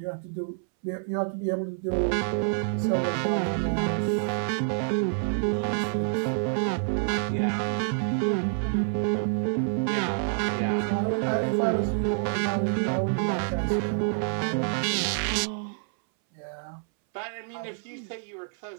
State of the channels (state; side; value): silent; left; 60 dB below the other